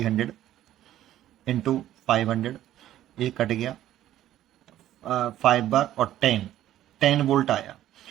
इंटू 500, ये कट गया 5 बार और 10 वोल्ट आया.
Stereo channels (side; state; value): left; quieter; 12.9 dB